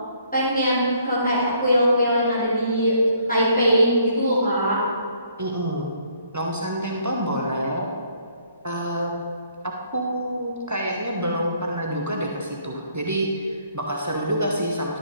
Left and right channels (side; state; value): both; inverted; correlation -0.65